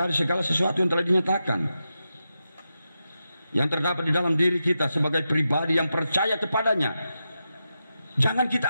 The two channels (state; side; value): inverted; both; correlation -0.89